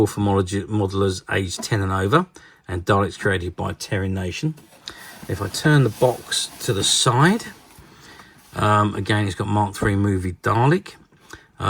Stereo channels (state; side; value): identical; both; correlation 1.00